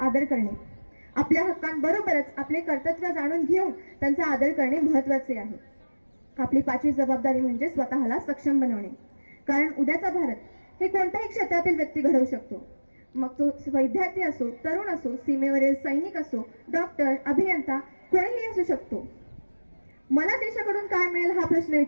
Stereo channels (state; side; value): inverted; both; correlation -1.00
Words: करणे. आपल्या हक्कांबरोबरच आपले कर्तव्य जाणून घेऊन त्यांचा आदर करणे महत्त्वाचे आहे. आपली पाचवी जबाबदारी म्हणजे स्वतःला सक्षम बनवणे. कारण उद्याचा भारत हे कोणत्याही क्षेत्रातील व्यक्ती घडवू शकतो. मग तो विद्यार्थी असो, तरुण असो, सीमेवरील सैनिक असो, डॉक्टर, अभियंता, कोणीही असू शकतो. मला देशाकडून काय मिळेल हा प्रश्न